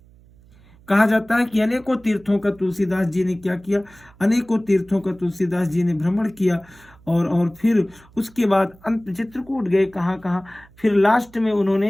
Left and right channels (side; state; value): right; noise; hum, 27 dB below the sound